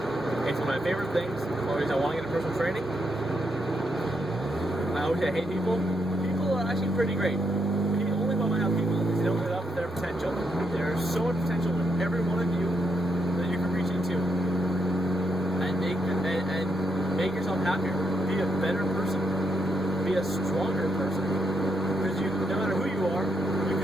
It's one of my favorite things. Always, I want to get into personal training. I always say I hate people. People are actually pretty great. The only problem I have people is they don't live up to their potential. There's so much potential in every one of you that you can reach into and make yourself happier. Be a better person. Be a stronger person. Because no matter who you are, you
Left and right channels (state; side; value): normal; both; correlation 0.79